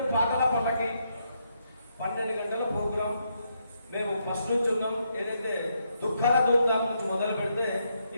పాటల పల్లకి 12 గంటల ప్రోగ్రాం మేము ఫస్ట్ నుంచి ఉన్నాం. ఏదైతే దుఃఖాల ధూమ్ధాం నుంచి మొదలు పెడితే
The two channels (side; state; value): both; inverted; correlation -0.78